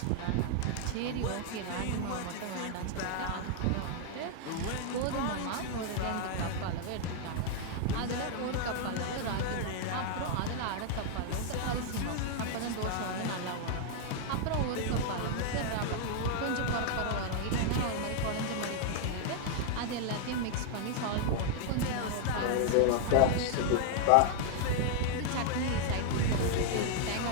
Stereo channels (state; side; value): different; both; correlation 0.00